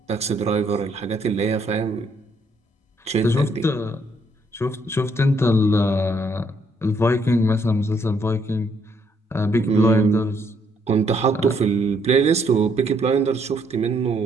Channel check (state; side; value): normal; both; correlation 0.70